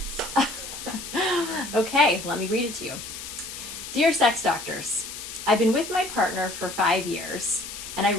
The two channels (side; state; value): left; noise; hiss, 10 dB below the sound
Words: Okay, let me read it to you. Dear Sex Doctors, I've been with my partner for 5 years, and I